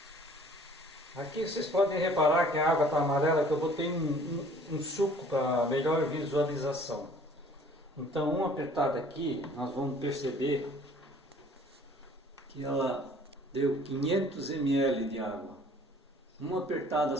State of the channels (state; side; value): normal; both; correlation 0.53